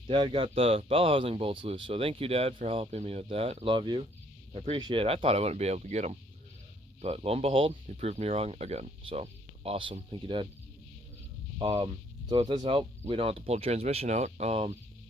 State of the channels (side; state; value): both; normal; correlation 0.64